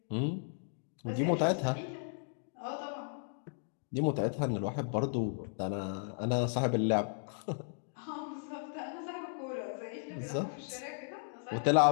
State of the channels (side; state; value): right; silent; digital silence